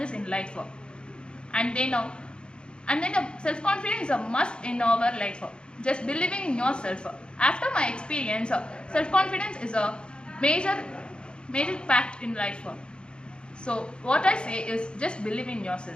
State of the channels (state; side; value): late; right; 0.053 ms